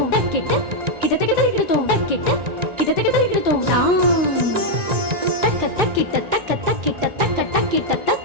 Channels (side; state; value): left; late; 1.9 ms